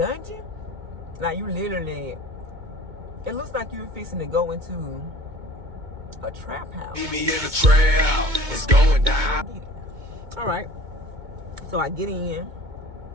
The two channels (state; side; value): late; left; 2.2 ms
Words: Like, you literally... It looks like you're fixing to go into a trap house. Meet me in the trap. It's going down. All right. So I get in.